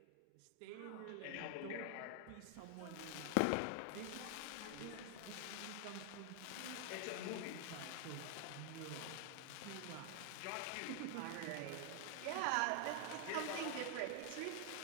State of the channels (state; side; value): different; both; correlation 0.00